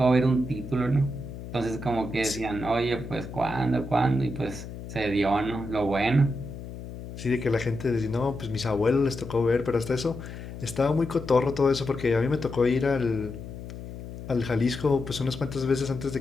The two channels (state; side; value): noise; left; hum, 11 dB below the sound